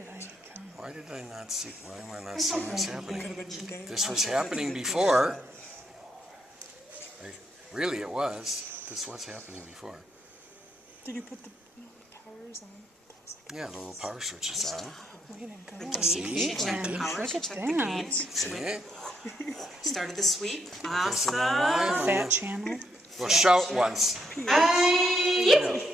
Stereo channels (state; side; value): normal; both; correlation 0.76